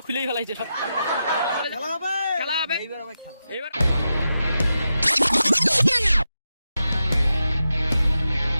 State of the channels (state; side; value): inverted; both; correlation -0.89